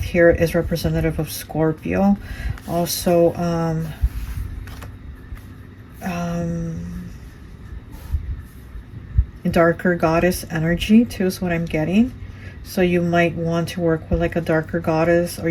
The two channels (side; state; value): both; identical; correlation 1.00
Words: here is representative of Scorpio. Also, darker goddess energy too is what I'm getting. So you might want to work with like a darker goddess, or